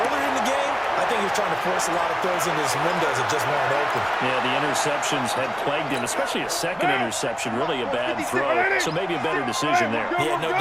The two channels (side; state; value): both; identical; correlation 1.00